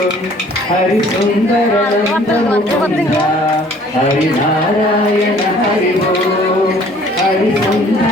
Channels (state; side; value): normal; both; correlation 0.55